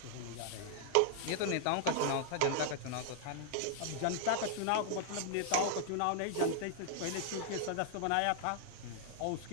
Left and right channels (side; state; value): both; different; correlation 0.00